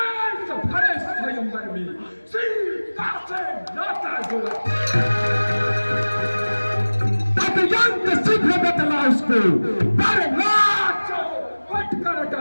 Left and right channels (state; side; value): inverted; both; correlation -1.00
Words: भरे स्वयंवर में सीता से नाता जोड़ा? अत्यंत शीघ्र बतला उसको, पर नाचो पट कर